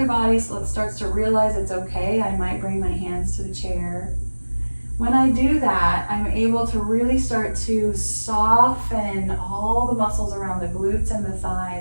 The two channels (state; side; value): inverted; both; correlation -1.00